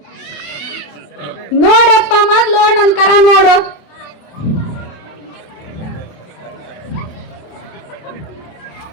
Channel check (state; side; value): late; right; 27 ms